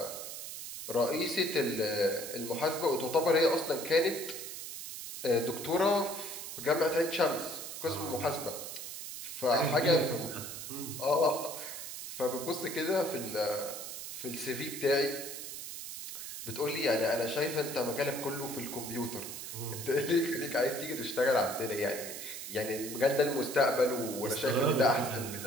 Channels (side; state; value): right; noise; hiss, 8 dB below the sound